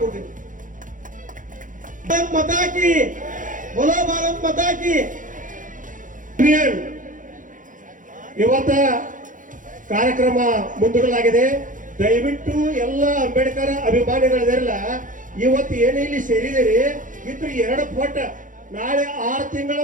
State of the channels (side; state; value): left; late; 0.38 ms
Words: ಭಾರತ್ ಮಾತಾ ಕಿ, ಬೋಲೋ ಭಾರತ್ ಮಾತಾ ಕಿ. ಇವತ್ತ ಕಾರ್ಯಕ್ರಮ ಮುಂದೂಡಲಾಗಿದೆ. ದಯವಿಟ್ಟು ಎಲ್ಲ ಅಂಬೇಡ್ಕರ್ ಅಭಿಮಾನಿಗಳಿರಲ್ಲ, ಇವತ್ತು ಏನೇ ಇಲ್ಲಿ ಸೇರಿದಿರಿ ಇದ್ರ 2 ಪಟ್ಟು ನಾಳೆ 6 ತಿಂಗಳ